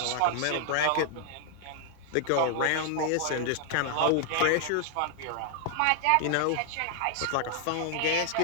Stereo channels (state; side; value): different; both; correlation 0.00